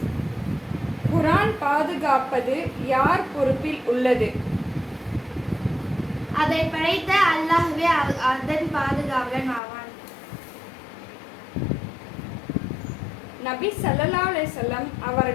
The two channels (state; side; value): drops out; right; at 9.6 s